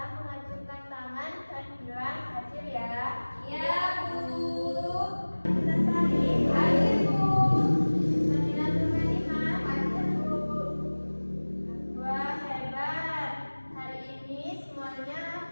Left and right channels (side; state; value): both; inverted; correlation -1.00